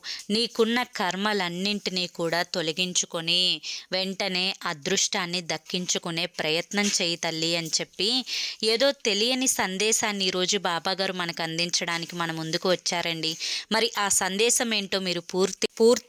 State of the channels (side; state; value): both; identical; correlation 1.00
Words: నీకున్న కర్మలన్నింటినీ కూడా తొలగించుకొని వెంటనే అదృష్టాన్ని దక్కించుకునే ప్రయత్నం చేయి తల్లి అని చెప్పి ఏదో తెలియని సందేశాన్ని ఈరోజు బాబాగారు మనకు అందించడానికి మన ముందుకు వచ్చారండి. మరి ఆ సందేశం ఏంటో మీరు